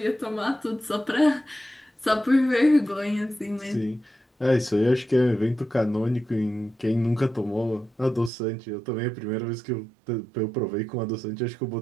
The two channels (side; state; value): left; drops out; at 8.3 s